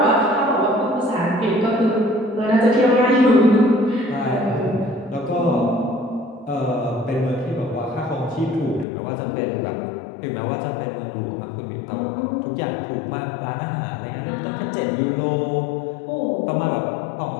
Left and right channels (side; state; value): right; drops out; at 8.8 s